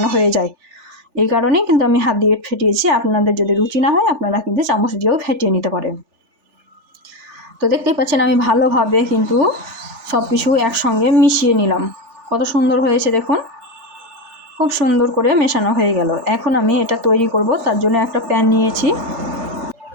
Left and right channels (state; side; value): late; left; 3.4 ms